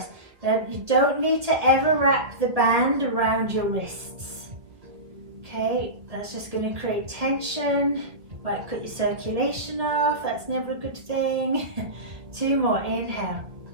You don't need to ever wrap the band around your wrists. Okay, that's just going to create tension. Might cut your circulation off. That's never a good thing. 2 more. Inhale.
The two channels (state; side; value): late; left; 1.6 ms